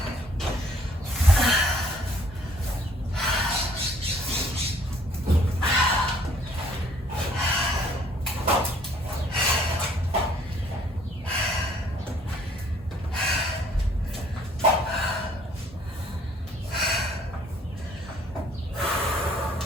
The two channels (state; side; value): normal; both; correlation 0.60